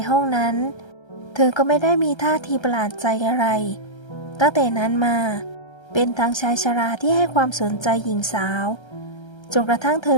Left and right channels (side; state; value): right; late; 1.3 ms